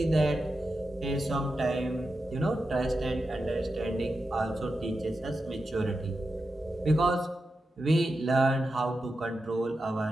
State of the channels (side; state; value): both; normal; correlation 0.89